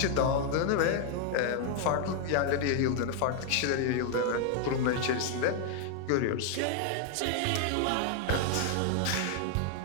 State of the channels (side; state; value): both; different; correlation 0.00